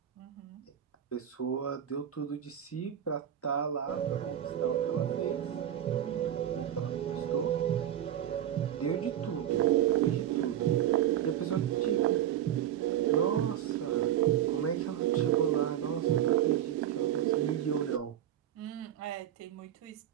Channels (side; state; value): left; quieter; 10.9 dB